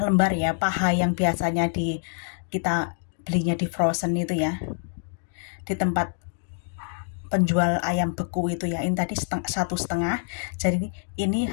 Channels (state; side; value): silent; right; digital silence